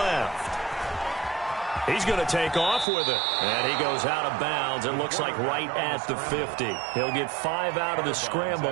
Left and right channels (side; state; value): left; drops out; at 2.9 s